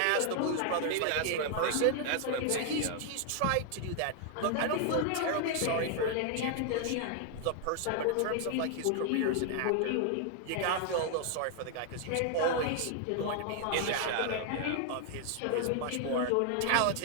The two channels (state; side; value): different; both; correlation 0.00